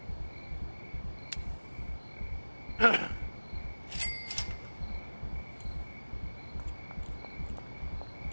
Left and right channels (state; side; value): inverted; both; correlation -1.00